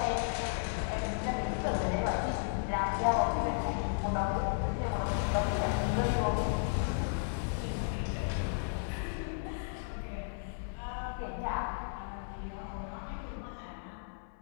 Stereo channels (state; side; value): silent; right; 55 dB below the other